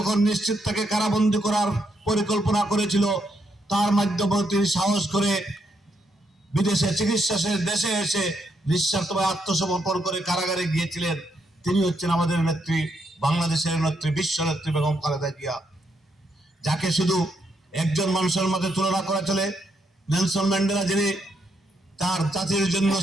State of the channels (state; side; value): normal; both; correlation 0.78